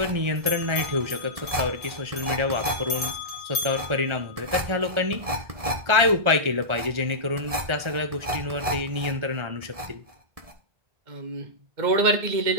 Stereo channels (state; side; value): late; left; 1.7 ms